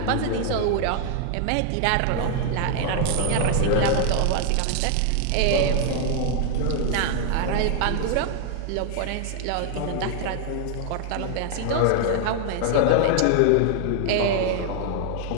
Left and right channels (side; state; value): both; different; correlation 0.00